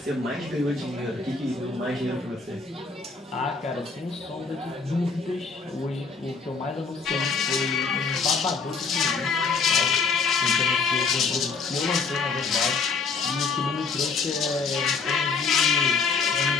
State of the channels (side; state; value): right; quieter; 4.8 dB